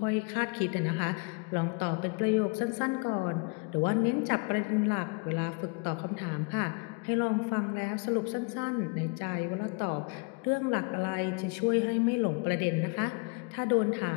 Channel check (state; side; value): quieter; right; 32.0 dB